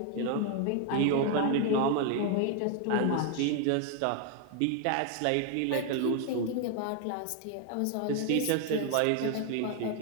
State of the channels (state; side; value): different; both; correlation 0.00